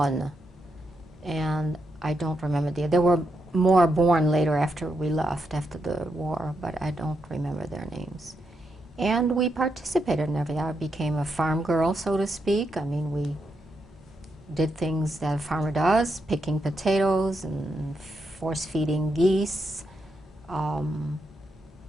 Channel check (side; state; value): both; normal; correlation 0.83